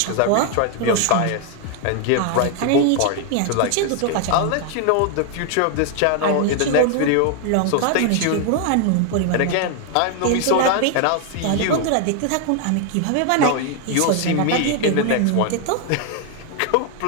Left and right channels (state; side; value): different; both; correlation 0.00